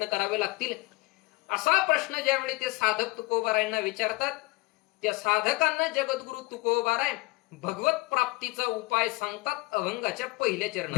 करावे लागतील? असा प्रश्न ज्यावेळी ते साधक तुकोबारायांना विचारतात, त्या साधकांना जगद्गुरु तुकोबाराय भगवत प्राप्तीचा उपाय सांगतात अभंगाच्या पहिल्या चरणात.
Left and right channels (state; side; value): quieter; right; 23.3 dB